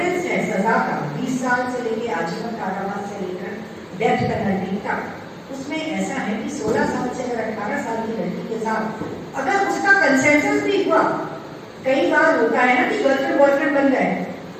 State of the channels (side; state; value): both; identical; correlation 1.00